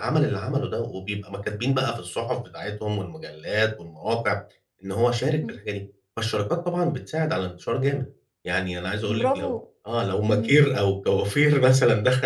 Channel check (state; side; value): identical; both; correlation 1.00